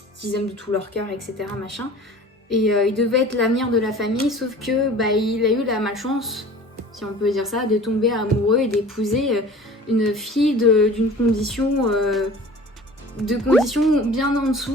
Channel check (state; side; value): normal; both; correlation 0.43